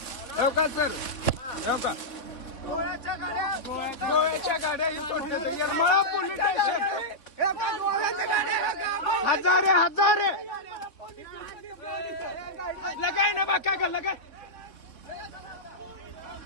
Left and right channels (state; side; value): late; right; 3.8 ms